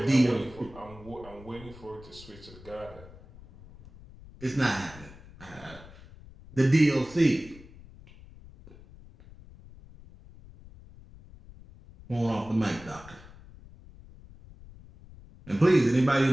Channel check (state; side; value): noise; left; rumble, 20 dB below the sound